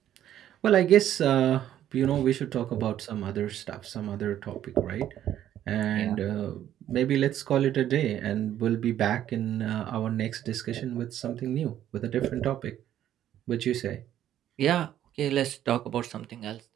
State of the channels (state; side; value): quieter; left; 11.4 dB